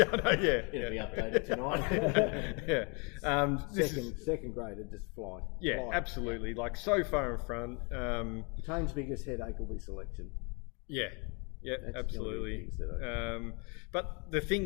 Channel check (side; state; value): right; quieter; 33.0 dB